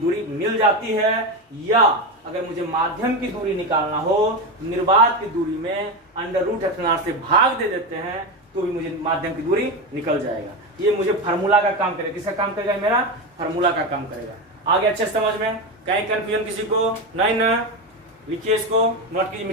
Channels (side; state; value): both; normal; correlation 0.16